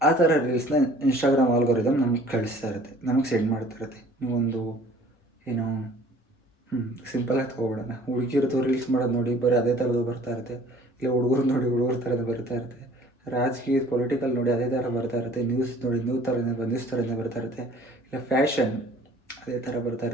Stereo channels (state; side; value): normal; both; correlation 0.52